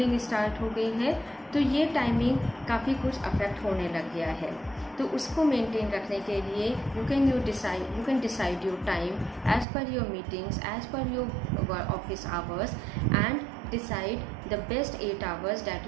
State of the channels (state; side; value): drops out; left; at 9.7 s